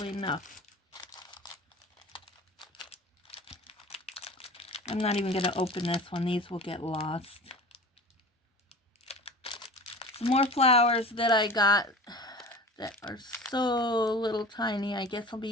enough. I'm not even going to open this one. These will get lost. Some more flowers that I got that are so little tiny. I guess I'll be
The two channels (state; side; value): normal; both; correlation 0.38